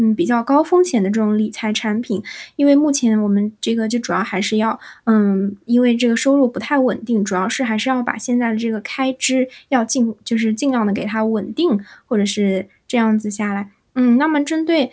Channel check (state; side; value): identical; both; correlation 1.00